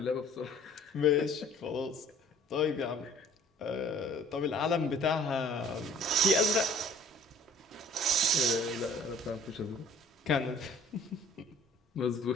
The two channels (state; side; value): normal; both; correlation 0.53